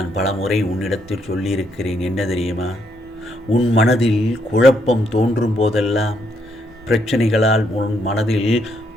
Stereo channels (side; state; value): both; normal; correlation 0.74